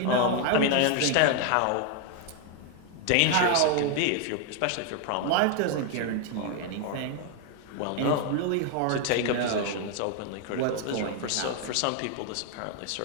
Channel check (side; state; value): both; different; correlation 0.00